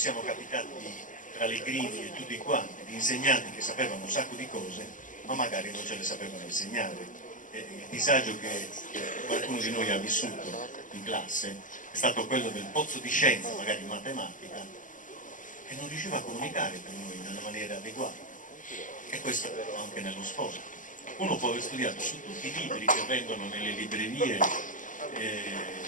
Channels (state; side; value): late; right; 0.38 ms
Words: capitati tra le griglie tutti quanti, di insegnanti che sapevano un sacco di cose, ma magari non ce le sapevano insegnare. E il disagio che qualcuno di noi ha vissuto in classe è stato quello del pozzo di scienza, magari in matematica, che non riusciva a comunicare per noi nella maniera adeguata. E questo anche nello sport. Uno può aver studiato su tutti i libri che vendono nelle librerie